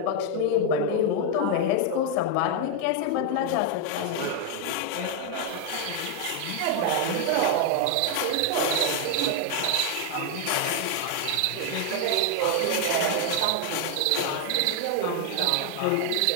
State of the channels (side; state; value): both; different; correlation 0.01